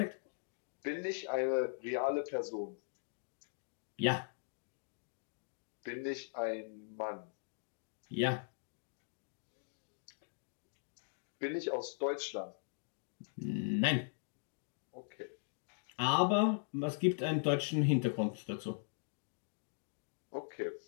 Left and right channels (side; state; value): right; silent; digital silence